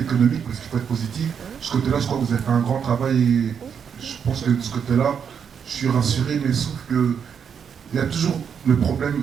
parce qu'il faut être positif. De ce côté-là, je crois que vous avez fait un grand travail et je pense que de ce côté-là, je suis rassuré, mais sauf que il y a toujours le problème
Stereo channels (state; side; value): quieter; left; 7.3 dB